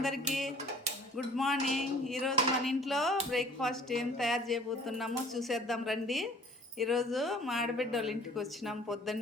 good morning. ఈరోజు మన ఇంట్లో బ్రేక్ఫాస్ట్ ఏం తయారు చేయబోతున్నామో చూసేద్దాం రండి. ఈరోజు మా ఆడబిడ్డ వాళ్ళ ఇంటికి వచ్చినాం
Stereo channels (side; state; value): both; normal; correlation 0.52